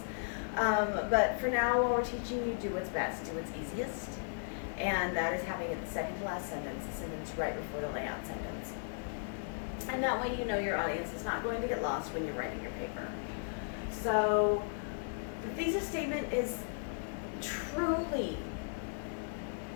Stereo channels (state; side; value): silent; right; digital silence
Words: But for now, while we're teaching you, do what's best, do what's easiest. And that is having it the second to last sentence, the sentence right before the layout sentence. And that way you know your audience is not going to get lost when you're writing your paper. So the thesis statement is truly